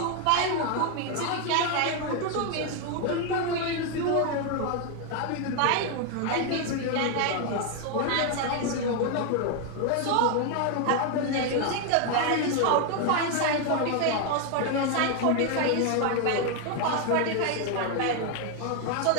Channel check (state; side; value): different; both; correlation 0.01